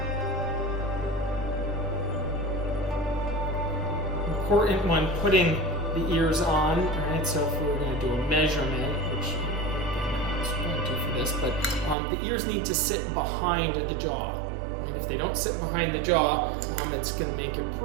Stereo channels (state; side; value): drops out; left; at 12.0 s